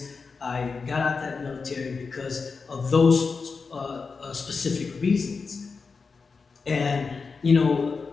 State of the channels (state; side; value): quieter; right; 4.8 dB